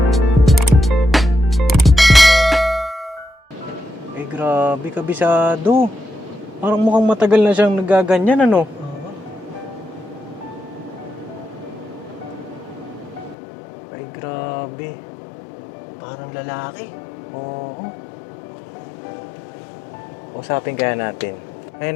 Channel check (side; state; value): right; drops out; at 13.4 s